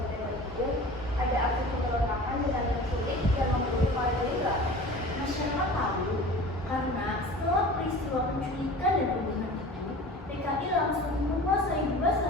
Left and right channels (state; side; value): normal; both; correlation 0.39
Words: itu ada aksi pemberontakan dengan penculik dan membunuh para jenderal. Masyarakat tahu karena setelah peristiwa penculikan dan pembunuhan itu, PKI langsung menguasai dua